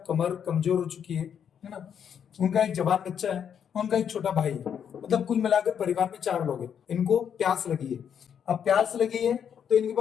कमर कमजोर हो चुकी है ना। उनका एक जवान बच्चा है, उनका एक छोटा भाई है। मतलब कुल मिलाकर परिवार में चार लोग हैं। इनको प्यास लगी है। अब प्यास लगी है तो इनके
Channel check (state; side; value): quieter; right; 8.2 dB